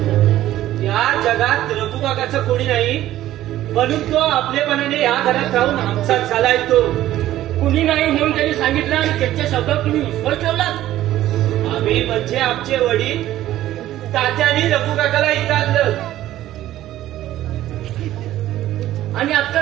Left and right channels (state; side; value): quieter; left; 13.9 dB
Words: या जगात रघु काकाचं कोणी नाही म्हणून तो आपलेपणाने या घरात राहून आमचाच झालाय. तो कुणी नाही म्हणून त्यांनी सांगितलं आणि त्याच्या शब्दावर तुम्ही विश्वास ठेवलात. आम्ही म्हणजे आमचे वडील तात्याने रघु काकाला इथं आणलं. आणि आता